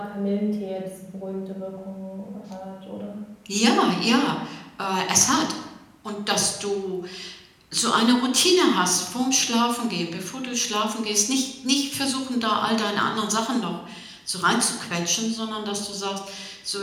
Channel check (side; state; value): both; identical; correlation 1.00